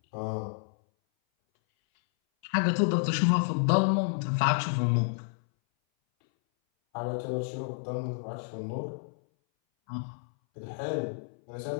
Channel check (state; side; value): silent; right; 58 dB below the other